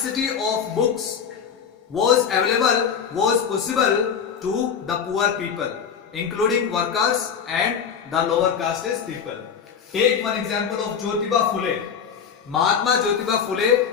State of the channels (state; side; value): quieter; right; 7.1 dB